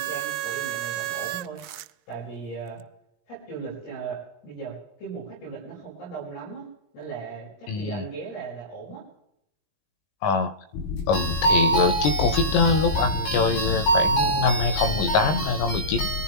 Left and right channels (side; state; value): right; late; 20 ms